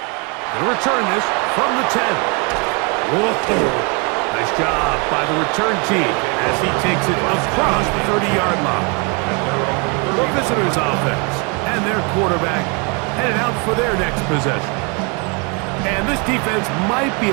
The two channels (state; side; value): quieter; left; 32.9 dB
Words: They'll return this from the 10. Whoa. Nice job by the return team as he takes it across the 30-yard line. The visitors' offense and their quarterback headed out for their next possession. And this defense might be